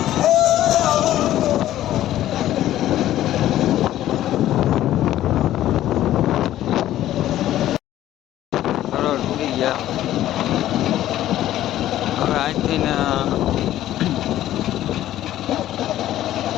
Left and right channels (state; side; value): quieter; right; 13.3 dB